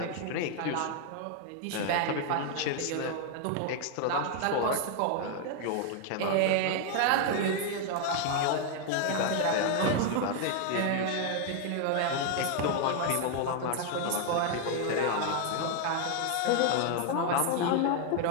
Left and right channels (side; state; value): both; different; correlation 0.00